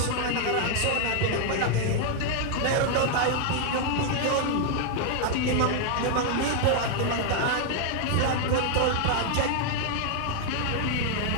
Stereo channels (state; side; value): different; both; correlation 0.00